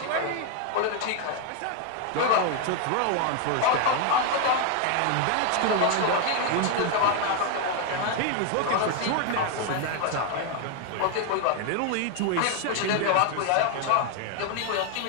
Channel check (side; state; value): both; different; correlation 0.01